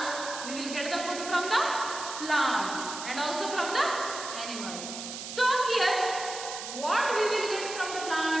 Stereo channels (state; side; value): noise; right; hiss, 8 dB below the sound